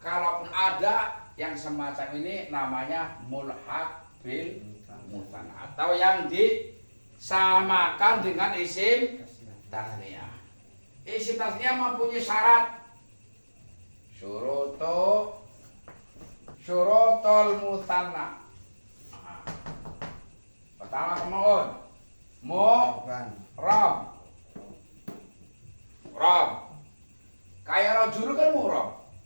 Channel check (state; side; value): inverted; both; correlation -1.00